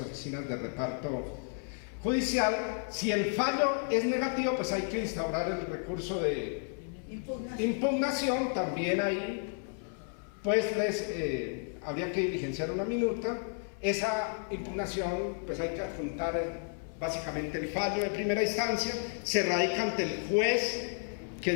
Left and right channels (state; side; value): silent; right; 56 dB below the other